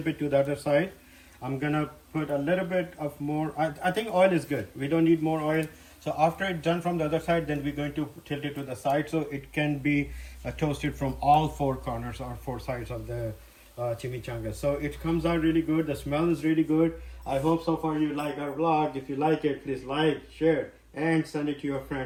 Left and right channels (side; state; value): both; identical; correlation 1.00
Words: it to the other side. I'm gonna put a little bit of more, I think oil is good. We don't need more oil. So after it's done from the other side, then we're going to tilt it to the side so it can be toasted from all four corners or four sides of the chimichanga. So it comes out really good. The smell is really good. I hope so far you like our vlog. If you like it, please like, share, and send it to your